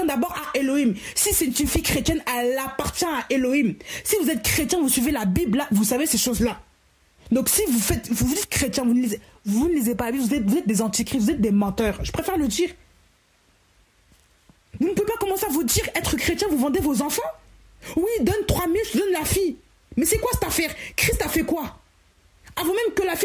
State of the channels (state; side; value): identical; both; correlation 1.00